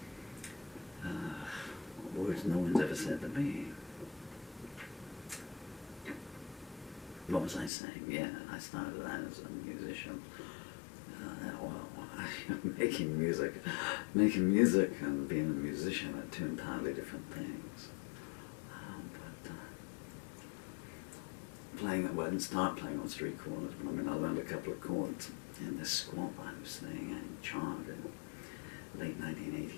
Words no one's ever said to me. What was I saying? Yeah, I started out as a musician. Making music and being a musician are two entirely different things. I didn't start playing on street corners, but I mean, I learned a couple of chords in this squat I was staying in Chard in late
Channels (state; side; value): drops out; right; at 7.7 s